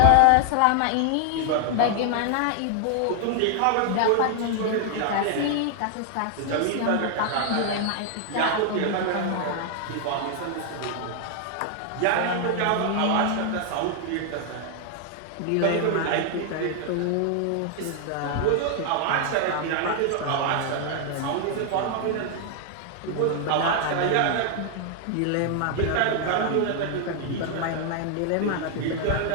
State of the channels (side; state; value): both; different; correlation 0.00